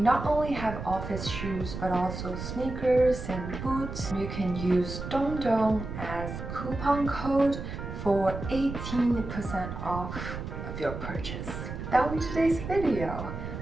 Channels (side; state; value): right; noise; rumble, 7 dB below the sound